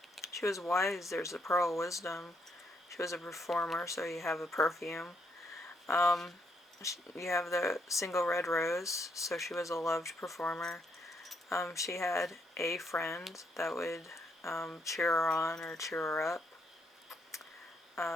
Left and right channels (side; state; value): both; normal; correlation 0.74